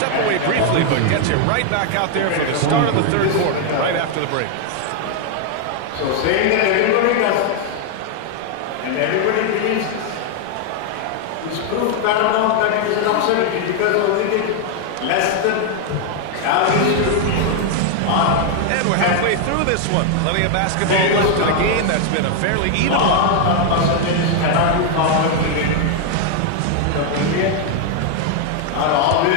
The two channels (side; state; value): both; different; correlation 0.00